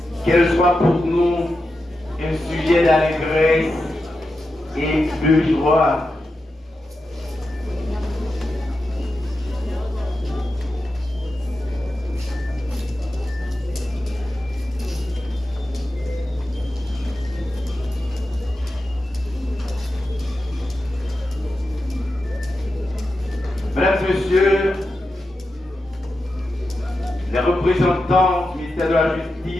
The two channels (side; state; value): both; normal; correlation 0.89